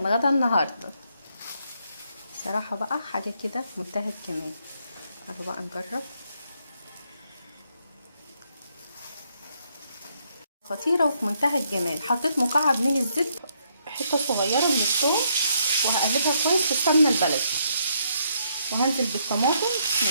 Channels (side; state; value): both; inverted; correlation -0.73